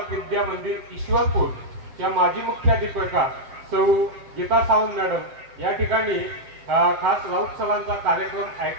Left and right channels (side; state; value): left; late; 7.5 ms